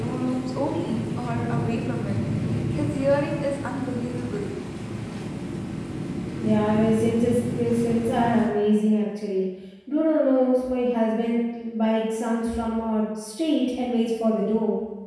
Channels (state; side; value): identical; both; correlation 1.00